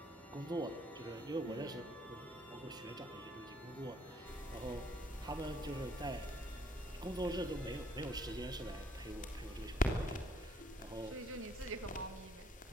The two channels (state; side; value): normal; both; correlation 0.65